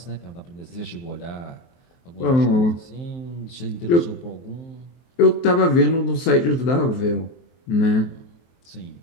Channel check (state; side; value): late; right; 23 ms